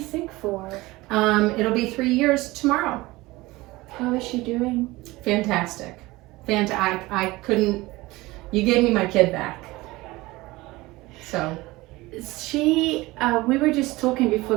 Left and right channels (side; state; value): left; quieter; 20.4 dB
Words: sick for? It'll be 3 years tomorrow. How is she doing? Fantastic. I couldn't, you gave me my kid back. So. We were just talking before